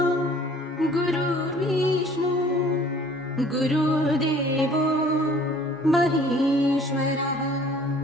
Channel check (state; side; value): normal; both; correlation 0.53